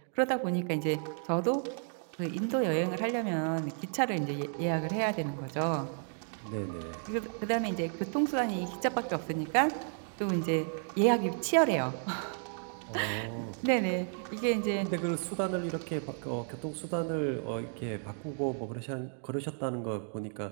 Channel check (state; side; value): silent; left; 56 dB below the other